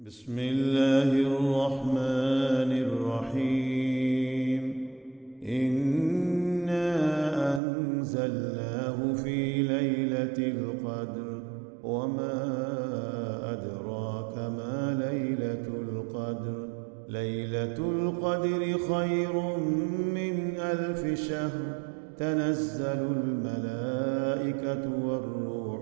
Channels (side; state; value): left; drops out; at 7.6 s